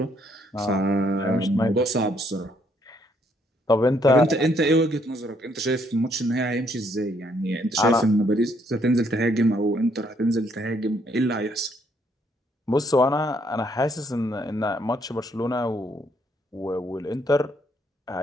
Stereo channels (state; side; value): normal; both; correlation 0.70